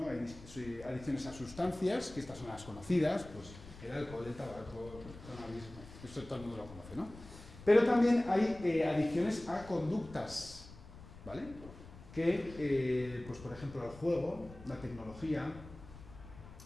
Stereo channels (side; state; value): left; noise; rumble, 17 dB below the sound